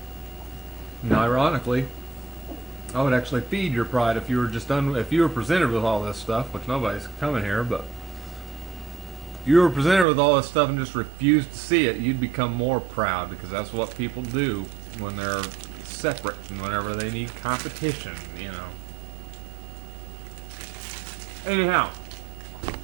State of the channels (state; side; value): drops out; left; at 10.1 s